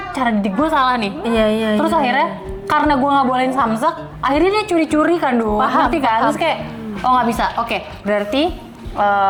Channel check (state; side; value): identical; both; correlation 1.00